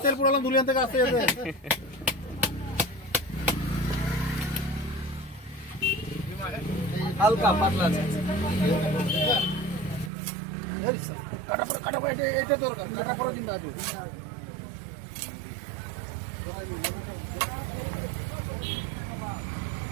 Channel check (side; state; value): left; drops out; at 10.1 s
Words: তেল পুরালাম দুলিয়ান থেকে আসতে যেতে। হালকা পাতলা আছে। কাটা পড়া এটা দরকার, কাটা পড়া চিন্তা আছে।